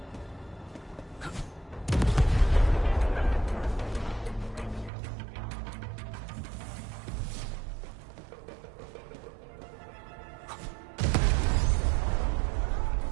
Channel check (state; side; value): drops out; left; at 4.9 s